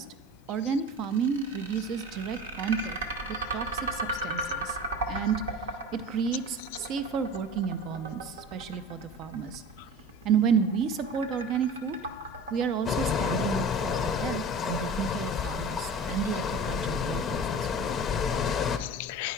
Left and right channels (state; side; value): normal; both; correlation 0.36